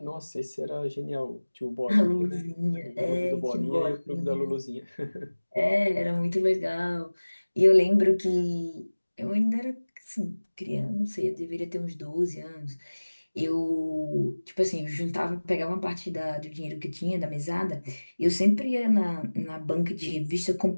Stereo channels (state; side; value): inverted; both; correlation -1.00